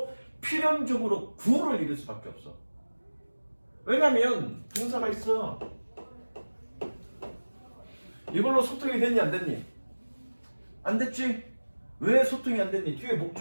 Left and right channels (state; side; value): inverted; both; correlation -1.00